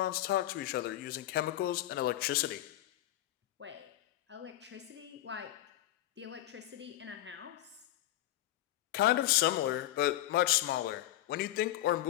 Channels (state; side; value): quieter; right; 14.3 dB